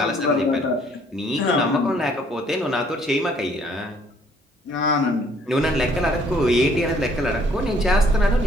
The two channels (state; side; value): normal; both; correlation 0.62